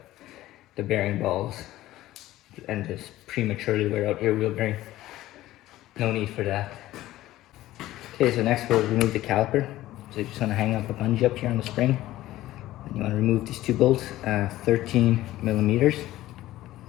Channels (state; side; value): quieter; right; 15.4 dB